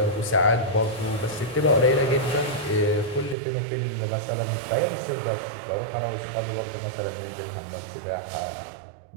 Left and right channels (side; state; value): left; drops out; at 3.4 s